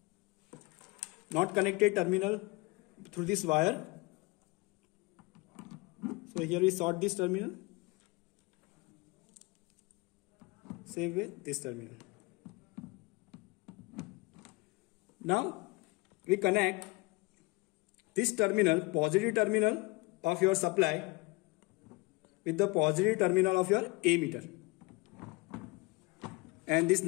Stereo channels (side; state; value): right; quieter; 25.2 dB